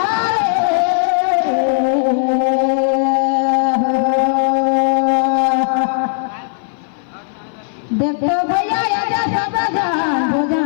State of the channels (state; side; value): silent; right; 58 dB below the other